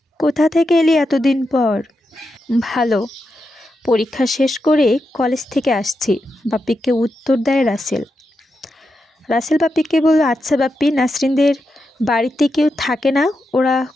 কোথা থেকে এলি এতদিন পর? ভালো, পরীক্ষা শেষ করে কলেজ থেকে আসছি, বাপ্পিকে উত্তর দেয় রাসেল। বাপ্পিকে বলল, আচ্ছা বাপ্পি, নাসরিনদের বাড়িতে কেউ থাকে না, ওরা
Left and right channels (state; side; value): normal; both; correlation 0.87